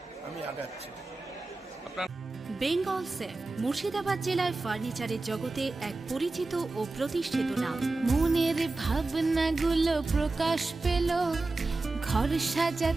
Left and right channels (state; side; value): quieter; left; 3.3 dB